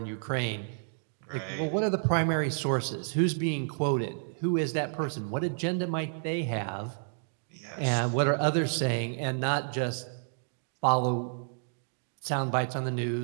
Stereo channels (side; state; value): left; silent; digital silence